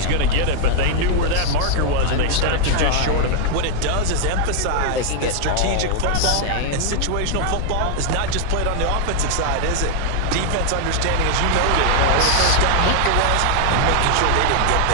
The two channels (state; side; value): different; both; correlation 0.00